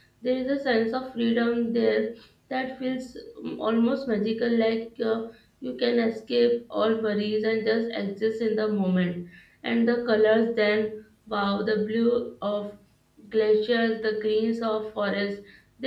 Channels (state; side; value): identical; both; correlation 1.00